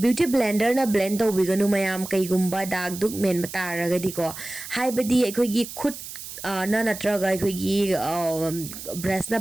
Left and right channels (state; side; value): noise; right; hiss, 11 dB below the sound